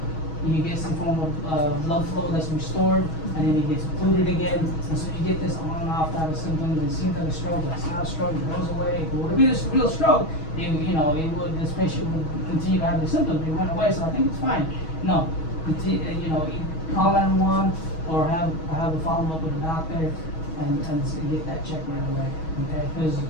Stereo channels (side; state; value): right; late; 6.2 ms